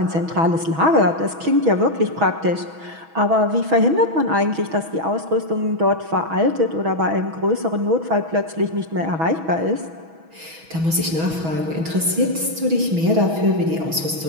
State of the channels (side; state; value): left; late; 6.2 ms